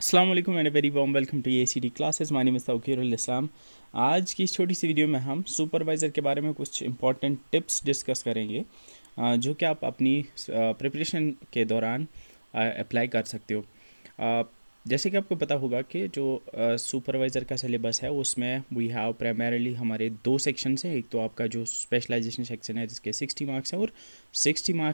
वालेकुम and very warm welcome to ACT classes. My name is Tauqirul Islam. आज की इस छोटी सी वीडियो में हम सुपरवाइज़र के बारे में कुछ इंपॉर्टेंट टिप्स डिस्कस करेंगे, जो कि आप अपनी प्रिपरेशन के दौरान अप्लाई कर सकते हो। जैसे कि आपको पता होगा कि जो सुपरवाइज़र का सिलेबस है उसमें वी हैव प्राइमरीली हमारे दो सेक्शंस हैं। एक तो आपका जो स्पेशलाइजेशन सेक्शन है जिसके 60 मार्क्स हैं, और 60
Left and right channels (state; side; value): inverted; both; correlation -1.00